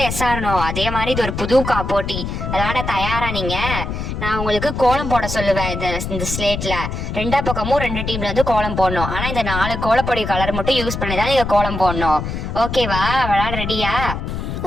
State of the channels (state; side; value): noise; left; rumble, 4 dB below the sound